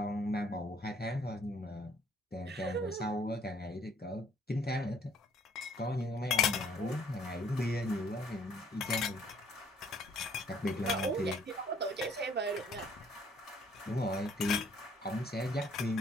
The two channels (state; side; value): normal; both; correlation 0.62